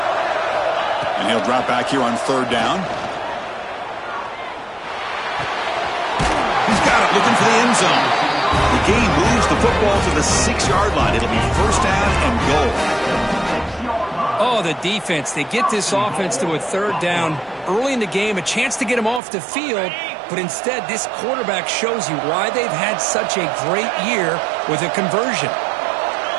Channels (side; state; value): left; drops out; at 19.2 s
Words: And he'll drop back here on 3rd down. He's got it, looking for the end zone. The game moves the football to the 6-yard line. It'll be first down and goal. Oh, the defense. They get this offense to a 3rd down early in the game, a chance to get him off the field, but instead this quarterback shows you why they've had such a great year with a conversion.